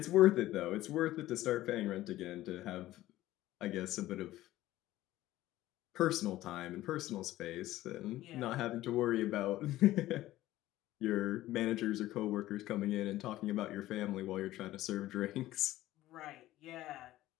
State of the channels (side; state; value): right; quieter; 15.5 dB